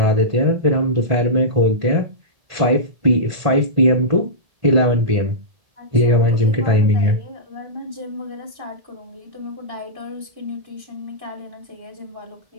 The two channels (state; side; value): late; left; 1.5 ms